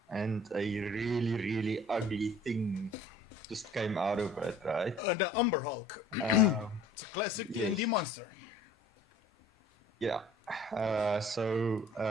and a really, really ugly thing just came out of it, right? The Umber Hulk. It's a classic yes. D&D monster. Yeah.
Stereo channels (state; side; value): normal; both; correlation 0.50